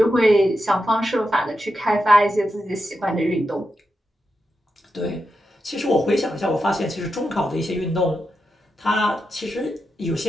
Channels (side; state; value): both; normal; correlation 0.87